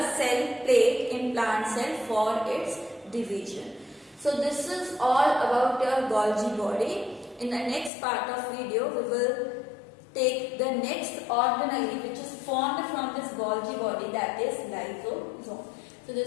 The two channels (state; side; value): drops out; right; at 7.9 s